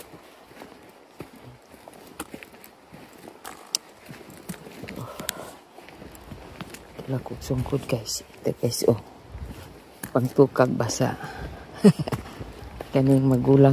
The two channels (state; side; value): identical; both; correlation 1.00